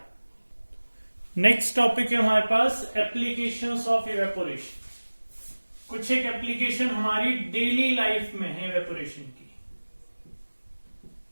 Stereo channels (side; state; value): both; inverted; correlation -1.00